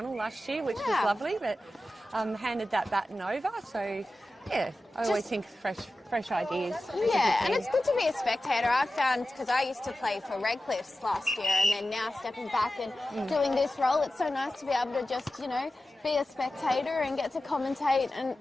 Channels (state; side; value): normal; both; correlation 0.93